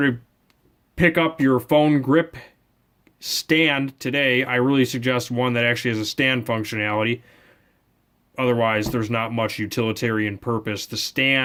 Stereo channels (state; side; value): identical; both; correlation 1.00